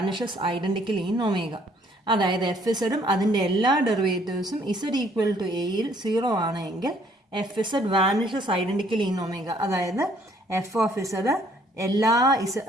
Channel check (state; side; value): normal; both; correlation 0.63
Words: identically in omega. അതായത് F ഇസഡും അതിൻ്റെ എല്ലാ ഡെറിവേറ്റീവ്സും Z equal to എയിൽ 0 ആണെങ്കിൽ F Z vanishes identically in omega. അതായത് F of Z